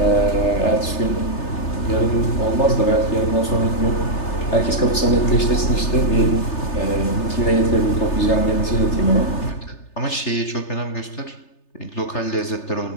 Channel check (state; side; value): late; right; 3.3 ms